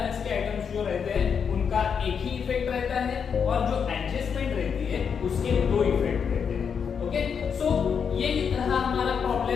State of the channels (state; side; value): quieter; right; 6.7 dB